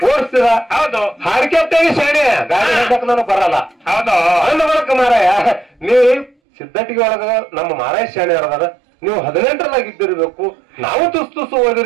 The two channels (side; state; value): left; drops out; at 6.3 s